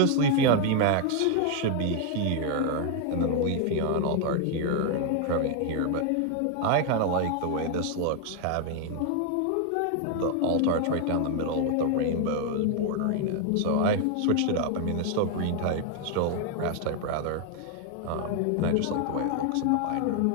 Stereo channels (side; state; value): both; different; correlation 0.00